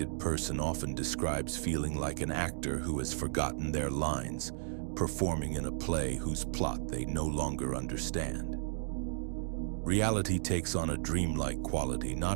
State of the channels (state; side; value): silent; left; digital silence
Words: person often describes feeling like an actor who has forgotten their lines, performing in a play whose plot they no longer understand. Reality takes on a dreamlike quality,